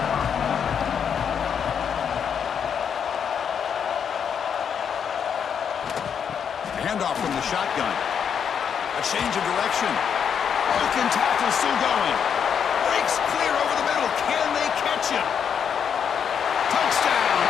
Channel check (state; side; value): quieter; right; 7.5 dB